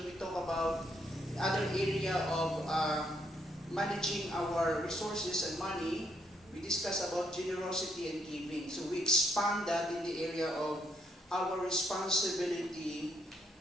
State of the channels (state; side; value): normal; both; correlation 0.74